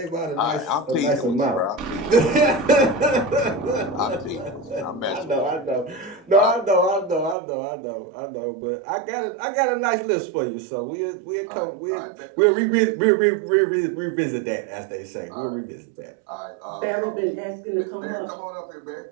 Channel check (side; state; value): left; drops out; at 7.4 s